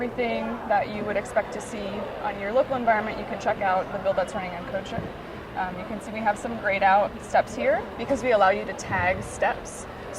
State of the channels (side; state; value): both; identical; correlation 1.00